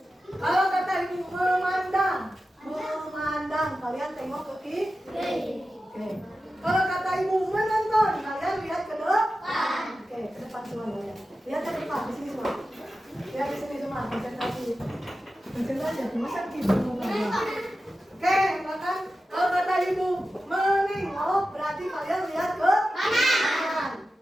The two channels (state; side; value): normal; both; correlation 0.93